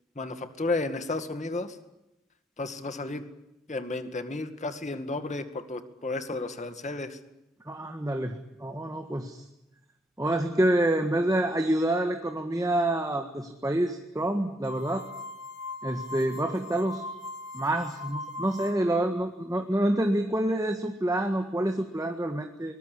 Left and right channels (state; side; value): normal; both; correlation 0.75